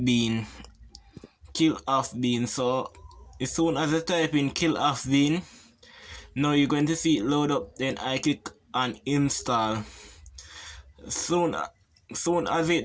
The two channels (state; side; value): identical; both; correlation 1.00